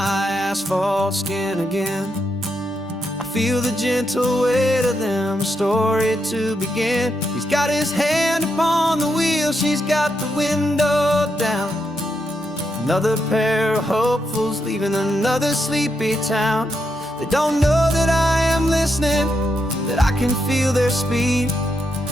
asphalt skin again. I feel the gentle weight of them, a story to begin. He's got his hand upon the wheel, she's got the window down. Another pair of hopefuls leaving another sleepy town. They don't know that I am listening, that I can feel their speed,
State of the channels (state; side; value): normal; both; correlation 0.82